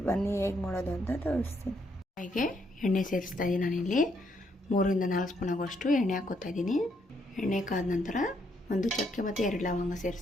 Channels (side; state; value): both; normal; correlation 0.74